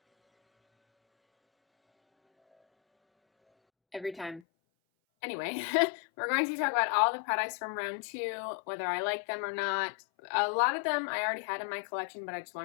Every time. Anyway, we're going to talk about all the products from round 2, whether I like them or not. A lot of them I already had in my collection, but I just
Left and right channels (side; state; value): right; drops out; at 4.4 s